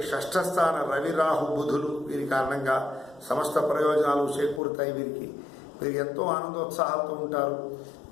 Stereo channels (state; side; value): drops out; right; at 4.6 s